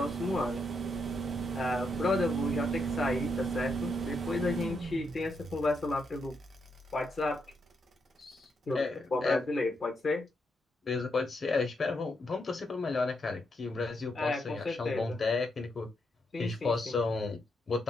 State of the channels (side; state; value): both; normal; correlation 0.80